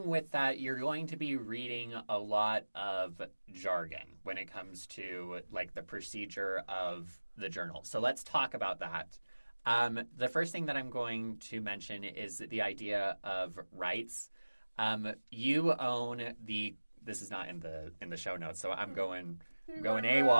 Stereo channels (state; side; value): inverted; both; correlation -1.00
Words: with that, you're going to be reading a lot of jargon when it comes to the procedure of the journal. So let's talk about that. The first thing that I'm going to mention is the idea of rights. You own this is not in the show notes, so I'm going